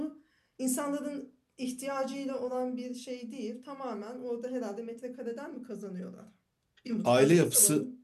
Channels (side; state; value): both; identical; correlation 1.00